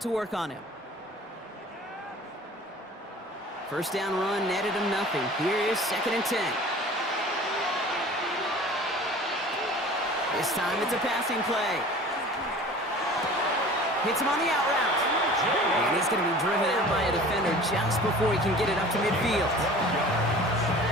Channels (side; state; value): both; normal; correlation 0.43